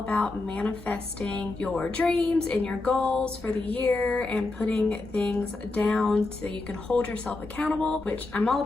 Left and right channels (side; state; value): right; quieter; 3.2 dB